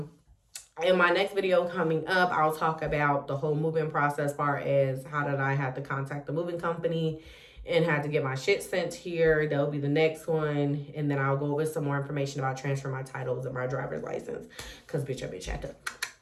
In my next video coming up, I'll talk about the whole moving process, far as how did I have to contact the moving company and had to get my shit sent here. That'll be the next one. And then I'll go over some more information about transferring my titles and my driver's license. Because, bitch, I had to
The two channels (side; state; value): both; identical; correlation 1.00